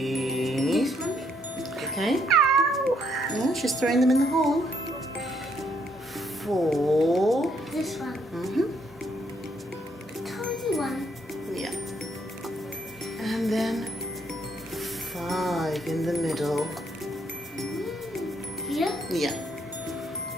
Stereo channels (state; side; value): normal; both; correlation 0.72